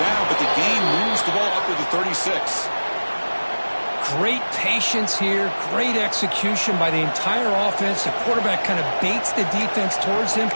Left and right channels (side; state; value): both; inverted; correlation -1.00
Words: but the game moves the ball up to the 36. Great patience here. Great execution by the entire offense. The quarterback kind of baits the defense towards him,